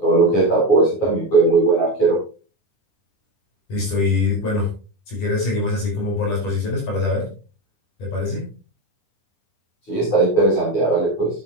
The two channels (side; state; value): right; late; 10 ms